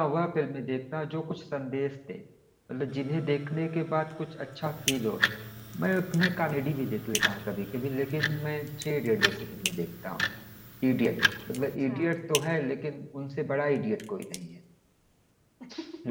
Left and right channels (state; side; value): identical; both; correlation 1.00